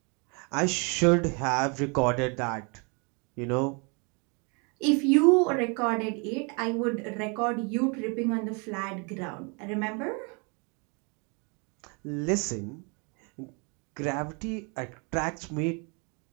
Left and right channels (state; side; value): quieter; left; 33.7 dB